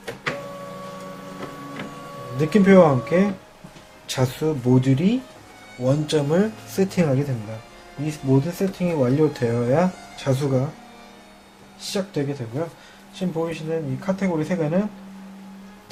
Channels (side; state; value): both; identical; correlation 1.00